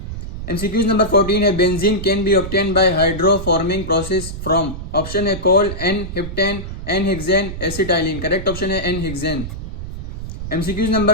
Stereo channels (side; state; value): right; noise; rumble, 8 dB below the sound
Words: MCQ number 14 है benzene can be obtain bye hydroforming process from. Option है coal, n-heptane, n-hexane, acetylene. Correct option है n-hexane. MCQ